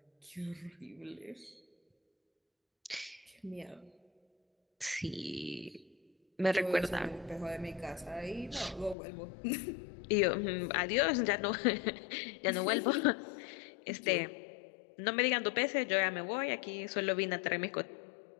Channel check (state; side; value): drops out; right; at 9.0 s